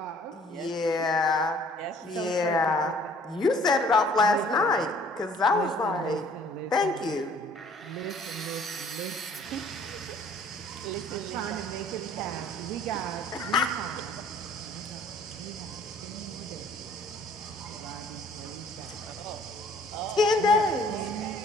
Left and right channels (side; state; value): both; normal; correlation 0.56